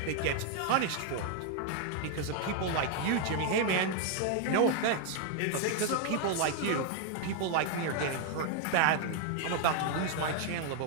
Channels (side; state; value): both; different; correlation 0.01